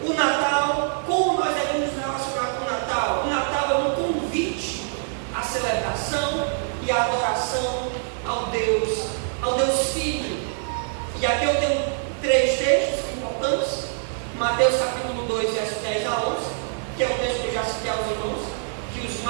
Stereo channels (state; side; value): silent; left; digital silence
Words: o Natal, como nós devemos nos relacionar com o Natal? O Natal é um convite à celebração e à adoração ao Deus Filho. E aqui eu tenho 3 textos importantes. Mateus capítulo 2, verso 10 a 11, que é o texto que eu já citei aos irmãos, que os